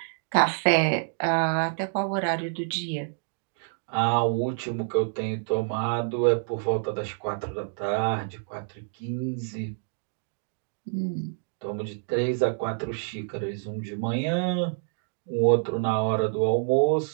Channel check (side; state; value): left; silent; digital silence